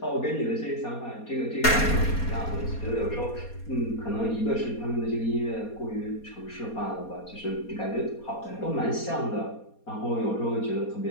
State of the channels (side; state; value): right; late; 4.2 ms